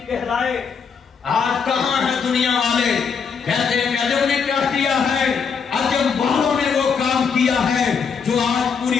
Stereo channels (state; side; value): quieter; right; 6.1 dB